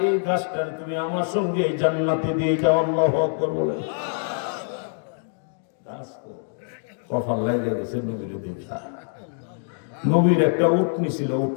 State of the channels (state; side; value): silent; right; digital silence